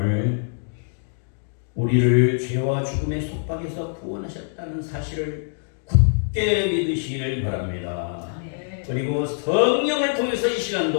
우리를 죄와 죽음의 속박에서 구원하셨다는 사실을 굳게 믿으시기를 바랍니다. 그리고 성령을 통해서 이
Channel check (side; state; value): right; silent; digital silence